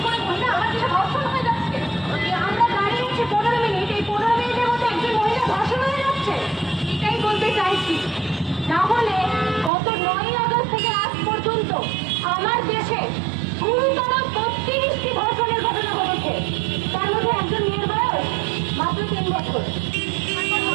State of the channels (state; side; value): drops out; left; at 9.7 s